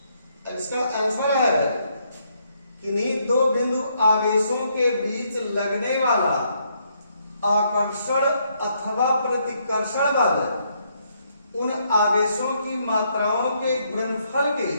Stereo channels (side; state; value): both; inverted; correlation -0.73